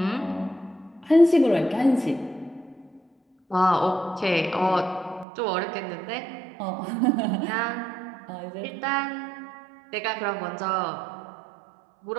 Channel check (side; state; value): left; drops out; at 5.2 s